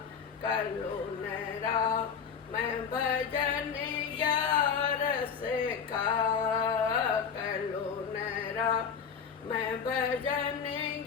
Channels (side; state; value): right; quieter; 6.8 dB